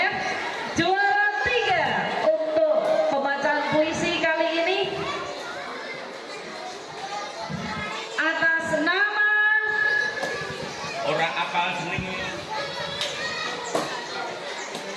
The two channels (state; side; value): identical; both; correlation 1.00